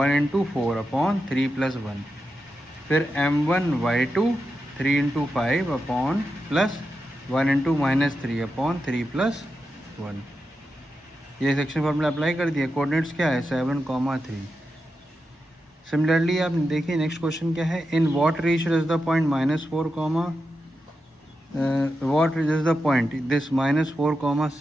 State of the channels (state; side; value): normal; both; correlation 0.88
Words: इंटू 4 अपॉन 3 प्लस 1। फिर m1 y2 3 into 5 upon plus 1 into -3 upon 3 plus 1। ये सेक्शन फॉर्मूला अप्लाई कर दिया। कोऑर्डिनेट्स क्या है, 7,3। सिमिलरली आप देखिए नेक्स्ट क्वेश्चन क्या है, in what ratio is the point -4, what is the point this -4,